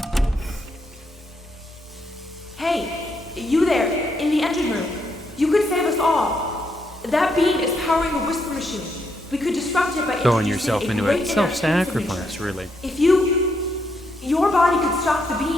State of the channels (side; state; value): both; normal; correlation 0.77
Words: Hey, you there, in the engine room. You could save us all. That beam is powering a whisper machine. We could disrupt it by Throwing introducing yourself a into great it. interactive Self-sacrifice, information. really. If your body could stop the